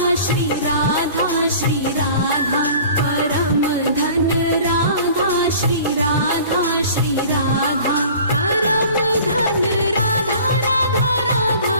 श्री राधा श्री राधा परम धन राधा श्री राधा श्री राधा परम धन राधा राधा राधा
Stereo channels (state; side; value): inverted; both; correlation -0.45